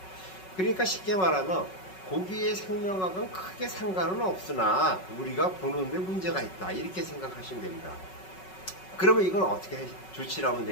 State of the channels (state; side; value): late; right; 5.4 ms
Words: 그러니까 쉽게 말하면 고기의 생명학은 크게 상관은 없으나 우리가 보는데 문제가 있다 이렇게 생각하시면 됩니다. 그러면 이걸 어떻게 조치를 하면